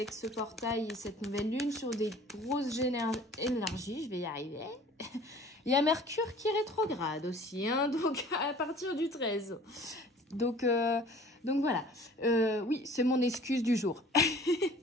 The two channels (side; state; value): both; normal; correlation 0.49